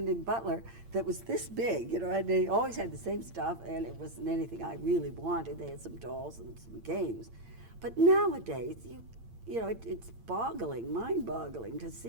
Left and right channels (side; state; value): left; late; 8.8 ms